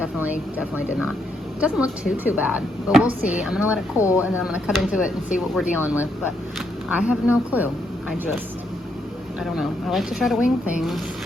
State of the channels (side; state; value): both; normal; correlation 0.77